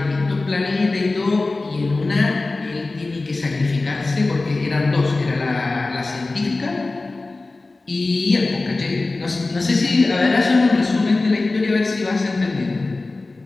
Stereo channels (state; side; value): quieter; right; 3.3 dB